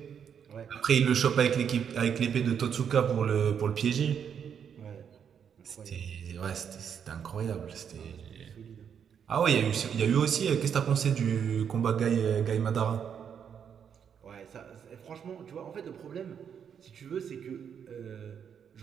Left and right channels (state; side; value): quieter; left; 7.8 dB